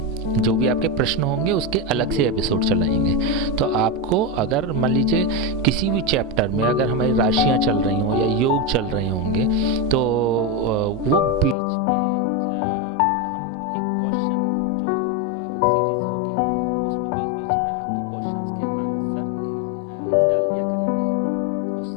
जो भी आपके प्रश्न होंगे उसके अलग से एपिसोड चलाएंगे। तो आपको अगर मान लीजिए किसी भी चैप्टर में अगर हमारी राशियां चल रही हों या योग चल रहे होंगे, तो वो बीच में हम एक क्वेश्चन जो सीरीज़ होगी उसमें बीच बीच में आपके क्वेश्चंस के आंसर डाल दिया करेंगे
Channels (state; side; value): drops out; right; at 11.6 s